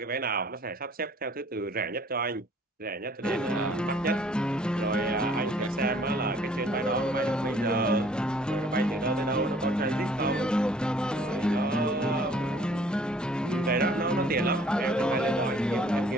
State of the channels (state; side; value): normal; both; correlation 0.57